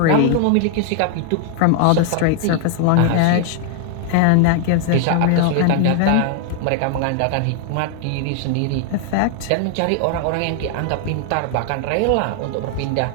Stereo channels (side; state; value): both; different; correlation 0.00